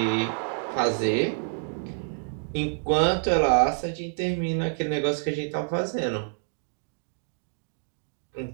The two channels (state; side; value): silent; left; 60 dB below the other